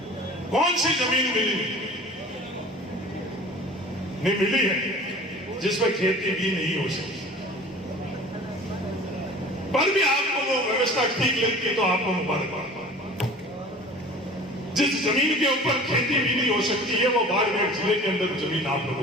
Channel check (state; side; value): normal; both; correlation 0.43